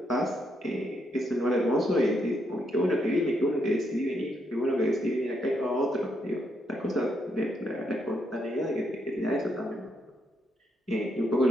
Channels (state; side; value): normal; both; correlation 0.78